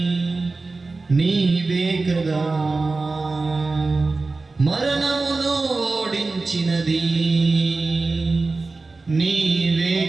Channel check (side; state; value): left; quieter; 3.7 dB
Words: నీవే కదా, మరణమును ఓడించినది నీవే